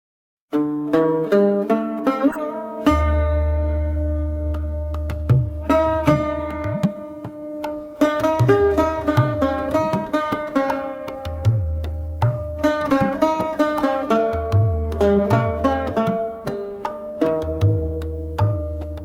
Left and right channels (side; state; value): both; identical; correlation 1.00